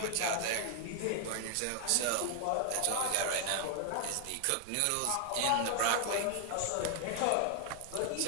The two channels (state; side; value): different; both; correlation 0.00